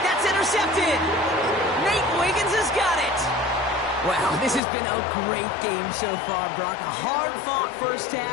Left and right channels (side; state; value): right; drops out; at 4.6 s